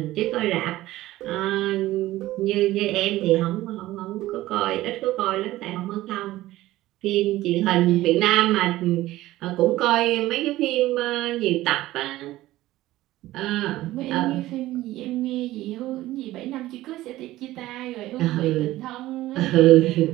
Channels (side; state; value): left; quieter; 16.3 dB